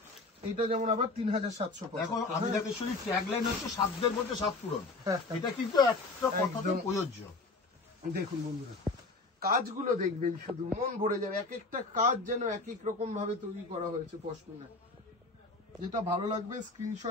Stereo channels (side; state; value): right; quieter; 3.4 dB